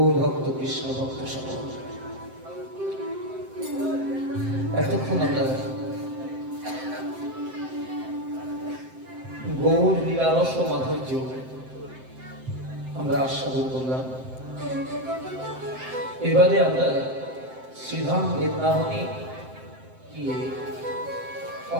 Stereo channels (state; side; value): late; left; 7.7 ms